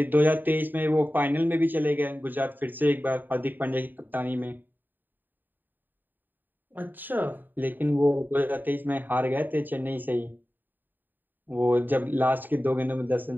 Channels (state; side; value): late; left; 0.091 ms